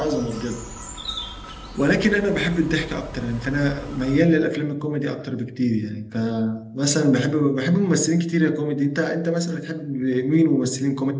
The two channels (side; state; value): both; identical; correlation 1.00